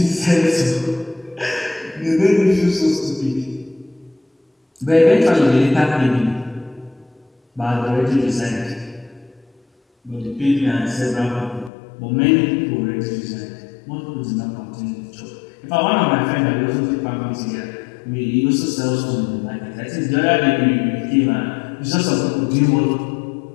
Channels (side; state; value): right; drops out; at 11.7 s